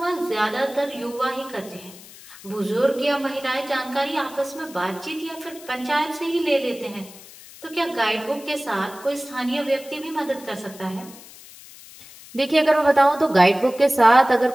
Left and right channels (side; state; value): left; noise; hiss, 19 dB below the sound